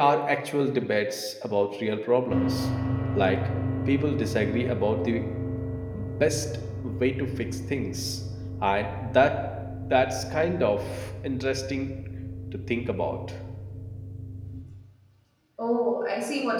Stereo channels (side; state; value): both; identical; correlation 1.00